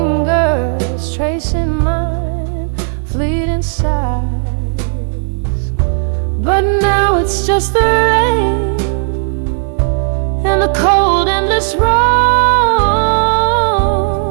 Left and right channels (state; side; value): silent; left; digital silence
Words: tracing mine, fleeting sighs. But now it's just the rain and the cold endless roams